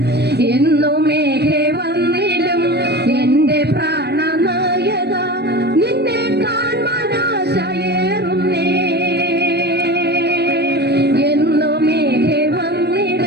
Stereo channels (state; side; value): late; left; 0.48 ms